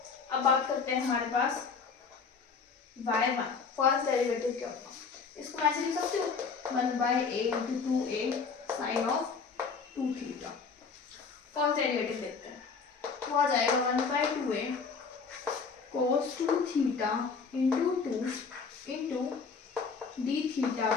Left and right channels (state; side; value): quieter; right; 5.2 dB